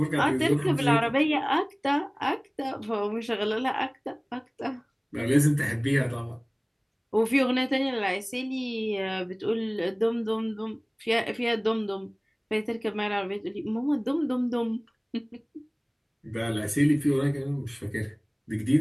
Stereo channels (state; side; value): identical; both; correlation 1.00